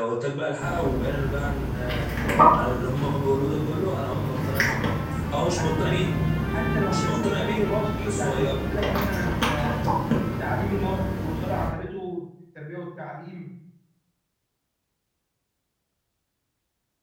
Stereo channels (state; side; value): identical; both; correlation 1.00